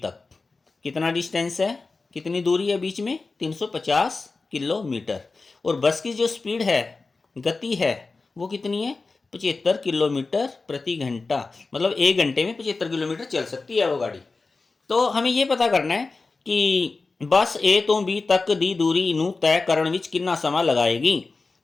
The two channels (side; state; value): right; quieter; 3.9 dB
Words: तक, कितना डिस्टेंस है, कितनी दूरी है बीच में, 350 किलोमीटर, और बस की जो स्पीड है, गति है, वो कितनी है, 75 किलोमीटर प्रति घंटा, मतलब 1 घंटे में 75 किलोमीटर चल सकती है वो गाड़ी। तो हमें ये पता करना है कि बस ए तो बी तक दी दूरी नू तय करने विच कितना समा लगाएगी,